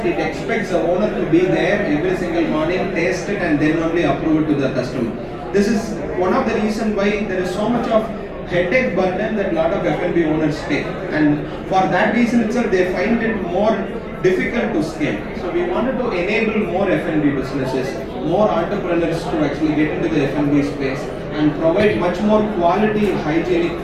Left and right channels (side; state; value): both; identical; correlation 1.00